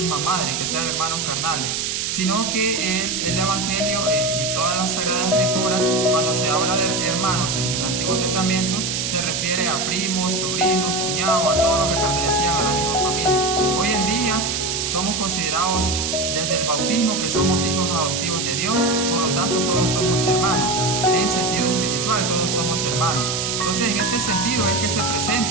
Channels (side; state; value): right; noise; hiss, 1 dB below the sound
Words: madre, que sean hermanos carnales, sino que el Evangelio y todas las Sagradas Escrituras, cuando se habla de hermanos en el Antiguo Testamento, se refiere a primos, sobrinos, cuñados, a todos los que pertenecían a la misma familia. Hoy en día somos considerados desde el bautismo que somos hijos adoptivos de Dios, por lo tanto todos somos hermanos. En sentido espiritual todos somos hermanos. Entonces, en este sentido es que se